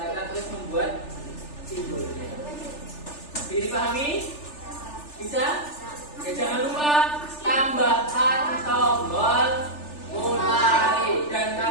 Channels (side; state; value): right; late; 3.4 ms